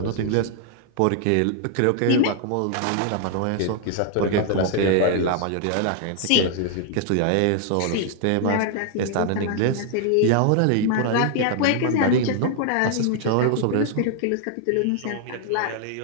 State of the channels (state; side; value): different; both; correlation 0.00